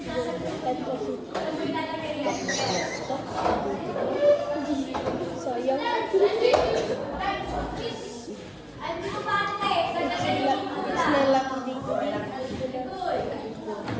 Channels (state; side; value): identical; both; correlation 1.00